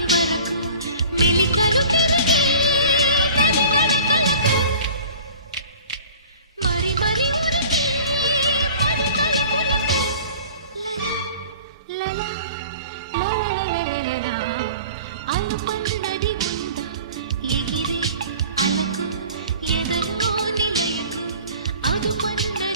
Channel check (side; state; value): both; inverted; correlation -0.44